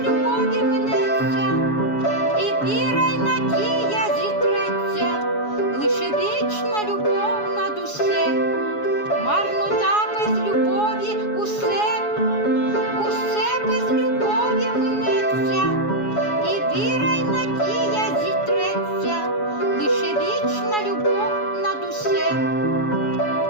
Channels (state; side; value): late; right; 7.1 ms